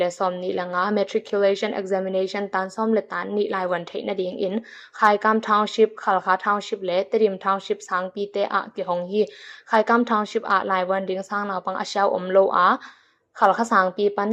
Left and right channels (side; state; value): both; identical; correlation 1.00